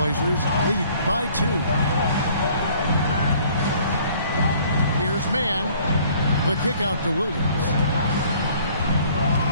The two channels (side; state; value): both; inverted; correlation -0.57